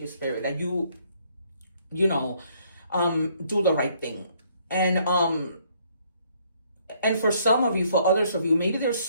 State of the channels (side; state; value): both; inverted; correlation -0.66